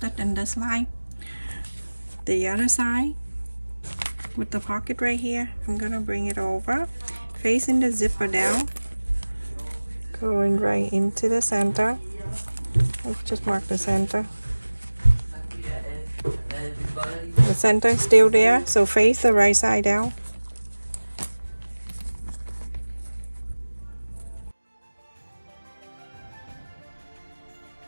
in this line, the other side with the pocket right here, I'm gonna bring it over, facing the zipper down, going right into the center. Let's just mark the center. The center is still there, so face the right side down.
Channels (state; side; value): inverted; both; correlation -1.00